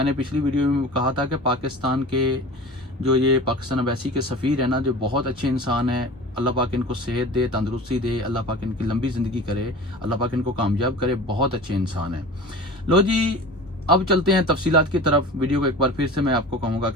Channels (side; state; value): both; normal; correlation 0.36